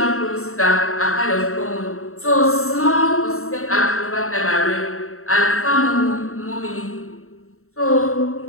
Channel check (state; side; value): late; right; 0.63 ms